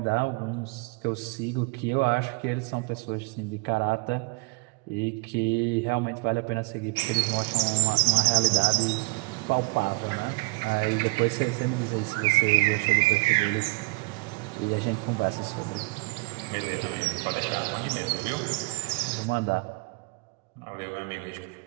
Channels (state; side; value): quieter; left; 26.7 dB